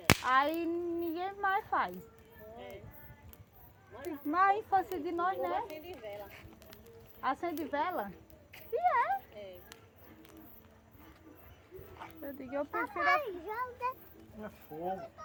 Aí ninguém mais faz. Mas a infância de nós, né? Acende vela? E é. Eu digo, eu prefiro. É fogo.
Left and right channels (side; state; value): both; identical; correlation 1.00